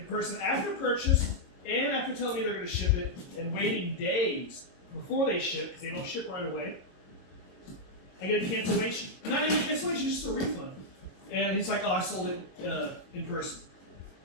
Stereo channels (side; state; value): right; late; 22 ms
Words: person, after purchase and after telling me they're going to ship it and waiting days before they ship, because they don't ship right away, I get a cancellation. Not even a cancellation, just a refund. And he's like, oh, I sold it in person.